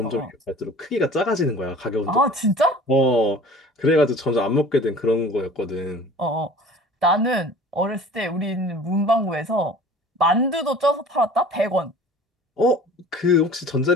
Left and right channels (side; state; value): both; normal; correlation 0.45